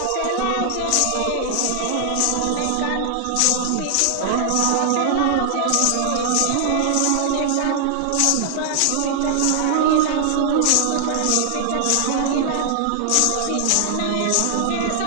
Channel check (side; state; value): both; different; correlation -0.01